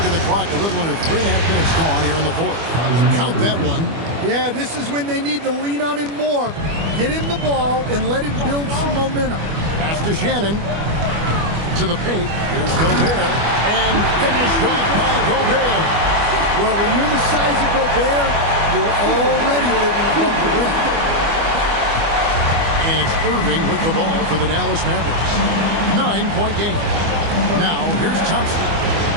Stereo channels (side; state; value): left; late; 25 ms